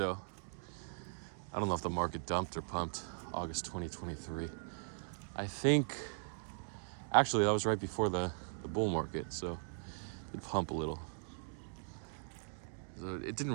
I don't know if the market dumped or pumped August 2023. I think, actually, that was right before the bull market, so it pumped a little. So it didn't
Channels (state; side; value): silent; left; digital silence